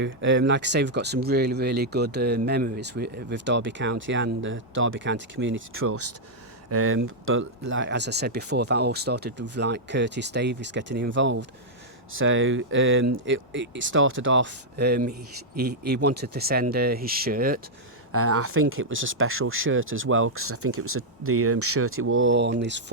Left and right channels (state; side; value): normal; both; correlation -0.06